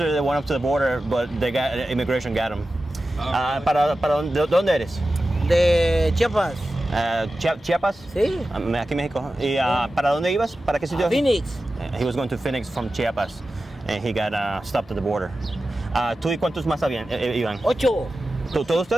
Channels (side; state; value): both; normal; correlation 0.93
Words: they went up to the border, but they got immigration got them. ¿Para dónde eres? De Chiapas. Chiapas. Sí. Aquí México. ¿Y para dónde ibas? ¿Para qué sitio? Phoenix. He was going to Phoenix from Chiapas, and he got stopped at the border. ¿Tú y cuántos más iban? 8. ¿Todos